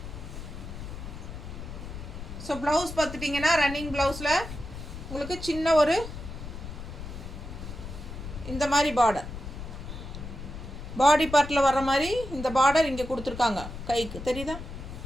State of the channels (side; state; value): left; noise; rumble, 10 dB below the sound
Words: ஸோ ப்ளவுஸ் பார்த்துட்டிங்கன்னா ரன்னிங் ப்ளவுஸில் உங்களுக்கு சின்ன ஒரு இந்த மாதிரி பார்டர், பாடி பார்ட்டில் வர்ற மாதிரி இந்த பார்டர் இங்கே கொடுத்துருக்காங்க கைக்கு, தெரியுதா?